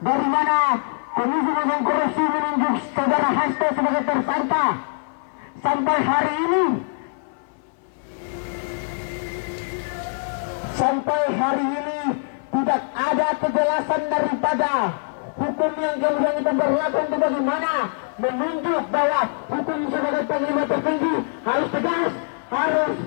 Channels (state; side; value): silent; right; 61 dB below the other